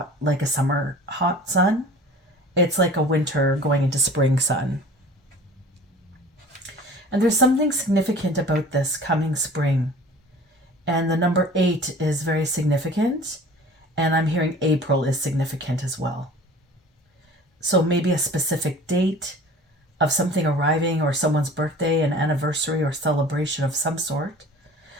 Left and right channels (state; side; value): normal; both; correlation 0.44